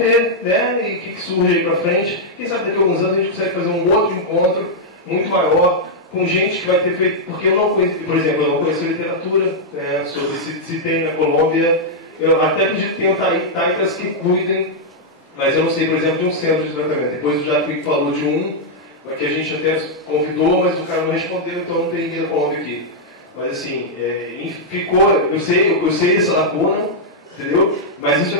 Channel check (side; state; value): both; normal; correlation -0.06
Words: né? E o que surge aí pra frente. Quem sabe daqui a alguns anos a gente consegue fazer um outro encontro muito maior, com gente que vai ter feito... Porque eu não conheço, por exemplo, eu não conheço literatura sobre se tem na Colômbia. Eu até acredito que tenham taitas que cuidem, mas eu não sei, por exemplo, de um centro de tratamento. Depois o Jaque falou de um, que a gente até convidou, mas o cara não respondeu, então não tem ninguém da Colômbia aqui. Mas assim, ficou... Eu sei essa lacuna, entendeu? Mas isso